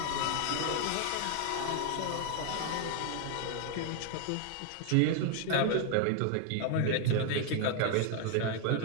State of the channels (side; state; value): both; different; correlation 0.00